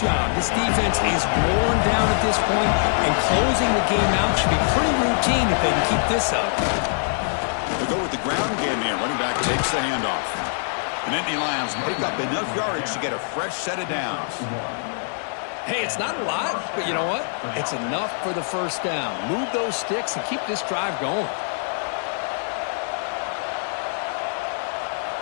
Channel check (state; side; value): silent; right; 63 dB below the other